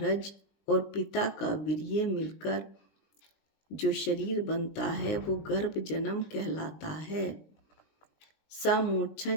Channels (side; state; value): right; late; 20 ms